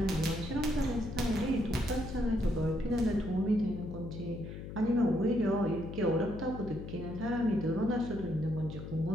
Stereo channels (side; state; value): left; noise; hum, 9 dB below the sound